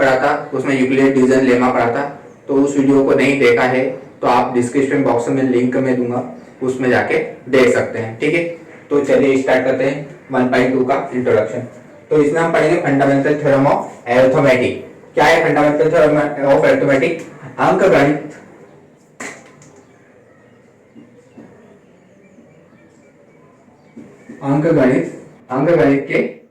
था, उसमें यूक्लिड डिवीजन लेमा पढ़ा था। तो उस वीडियो को नहीं देखा है तो आप डिस्क्रिप्शन बॉक्स में लिंक में दूंगा, उसमें जाके देख सकते हैं। ठीक है, तो चलिए स्टार्ट करते हैं 1.2 का इंट्रोडक्शन। तो इसमें हम पढ़ेंगे फंडामेंटल थ्योरम ऑफ अरिथमेटिक। क्या है फंडामेंटल थ्योरम ऑफ अरिथमेटिक? अंकगणित अंकगणित के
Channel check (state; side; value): identical; both; correlation 1.00